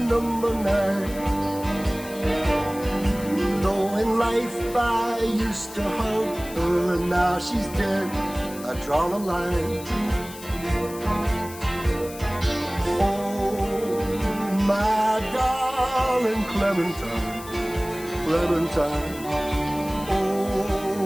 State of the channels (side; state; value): left; noise; hiss, 15 dB below the sound